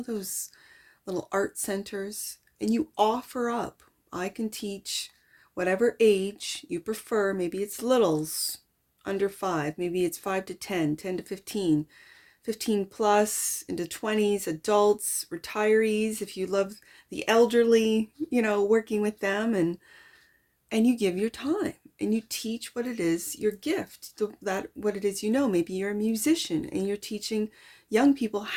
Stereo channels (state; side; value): identical; both; correlation 1.00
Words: those little art centers, and you offer up, I can teach whatever age you prefer. Maybe it's littles, under 5, maybe it's 5 to 10, 10 to 15, 15 plus, into 20s, adults, retirees, if you love the elderly, you know, working with them, and you give your time and you teach what it is, your gift, that what it is, you know. Maybe you're a musician and you're teaching young people